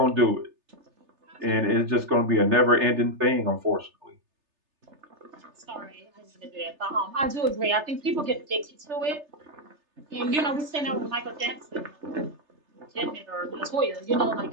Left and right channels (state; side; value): late; left; 3.3 ms